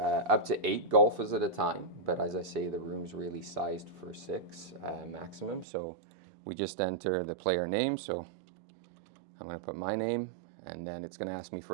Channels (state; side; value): drops out; left; at 5.7 s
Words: to 8 golfers at a time, but as I say, the room's really sized for 6 maximum. So we just enter the player name. So I'm going to put my name, and then it's going to ask me